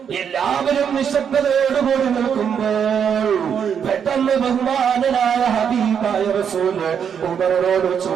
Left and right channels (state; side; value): quieter; left; 7.6 dB